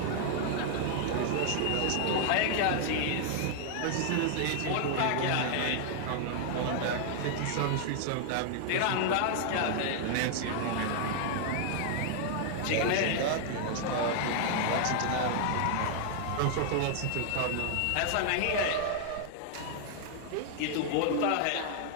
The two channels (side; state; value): both; different; correlation 0.00